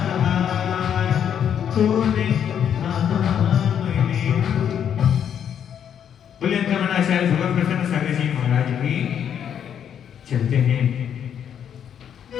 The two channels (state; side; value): quieter; right; 8.8 dB